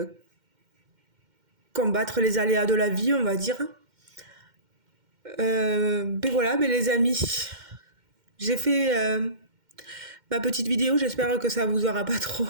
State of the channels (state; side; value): late; left; 2.1 ms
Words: combattre les aléas de la vie, on va dire. Ben voilà, ben les amis, j'ai fait ma petite vidéo, j'espère que ça vous aura pas